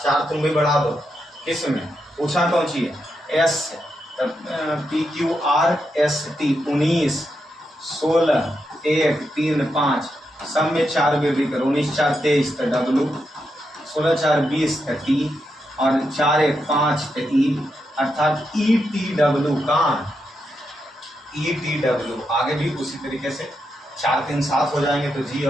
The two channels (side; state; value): both; normal; correlation 0.84